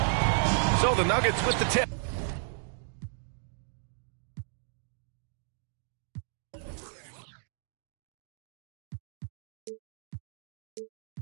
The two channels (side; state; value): left; silent; 56 dB below the other